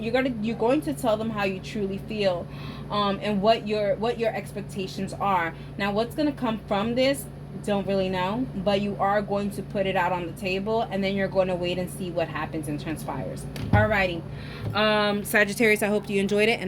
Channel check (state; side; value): identical; both; correlation 1.00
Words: going to tell them how you truly feel, and what your expectations are. Now, what's going to come from this, don't really know, but you are going to put it out on the table, and then you're going to wait and see what happens and transpires. Alrighty, Sagittarius, I hope you enjoyed it,